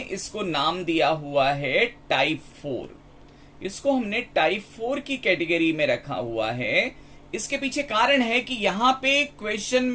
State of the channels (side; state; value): both; identical; correlation 1.00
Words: इसको नाम दिया हुआ है टाइप 4। इसको हमने टाइप 4 की कैटेगरी में रखा हुआ है। इसके पीछे कारण है कि यहां पे क्वेश्चन